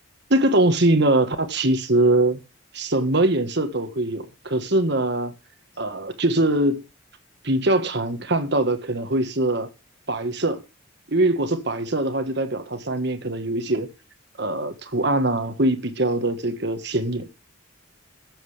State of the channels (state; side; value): normal; both; correlation 0.16